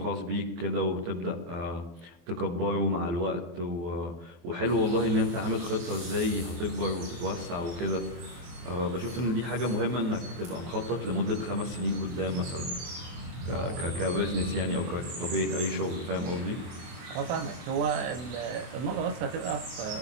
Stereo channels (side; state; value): left; late; 24 ms